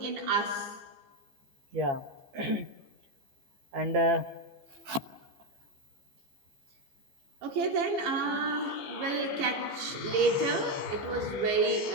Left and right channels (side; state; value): left; late; 15 ms